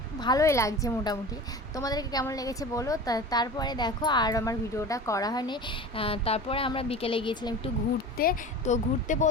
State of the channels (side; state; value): both; normal; correlation 0.35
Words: ভালোই লাগছে মোটামুটি। তোমাদেরকে কেমন লেগেছে বলো। তারপরে দেখো আর আমার ভিডিওটা করা হয়নি। তারপরে আমরা বিকেলে গিয়েছিলাম একটু ঘুরতে। তো ঘুরতে